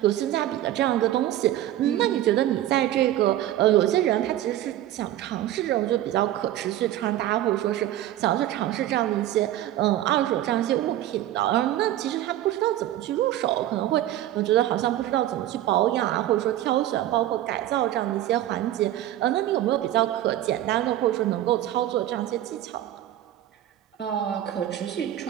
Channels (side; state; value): left; quieter; 13.3 dB